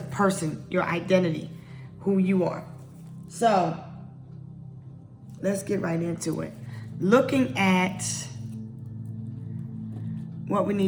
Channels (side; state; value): both; identical; correlation 1.00